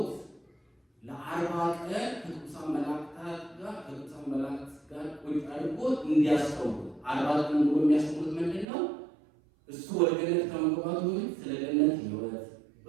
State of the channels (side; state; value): left; drops out; at 8.7 s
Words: ለ40 ቀን ከቅዱሳን መላእክት ጋር ቁጭ አድርጎት እንዲያስተምሩ 40 ቀን ሙሉ የሚያስተምሩት ምንድን ነው? እሱ ወደ ገነት ከመግባቱ በፊት ስለ ገነት ሕይወት